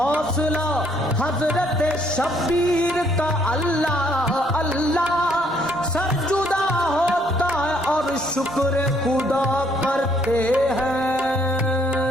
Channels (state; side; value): normal; both; correlation 0.67